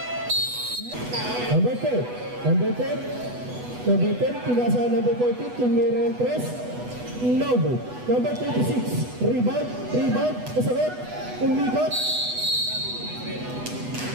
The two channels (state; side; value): late; left; 8.1 ms